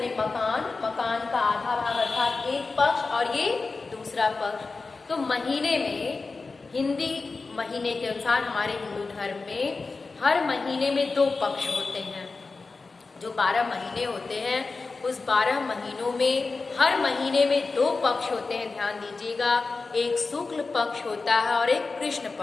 मकान, मकान का आधा भाग अर्थात एक पक्ष और ये दूसरा पक्ष। तो महीने में, हिंदी महीने के अनुसार हमारे हिंदू धर्म में हर महीने में 2 पक्ष होते हैं। जो 12 महीने होते हैं उस 12 महीनों में हर महीने में 2 पक्ष होते हैं। ध्यान दीजिएगा, एक शुक्ल पक्ष होता है और एक कृष्ण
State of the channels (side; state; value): right; quieter; 4.0 dB